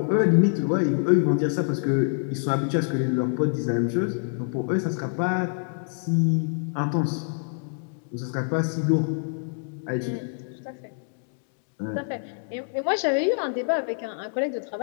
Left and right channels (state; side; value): silent; right; digital silence